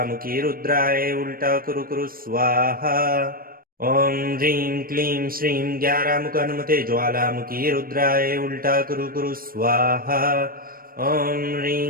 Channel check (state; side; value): late; left; 0.42 ms